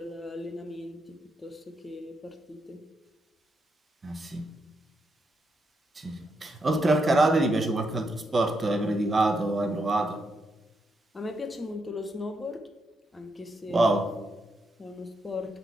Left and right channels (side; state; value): both; normal; correlation 0.81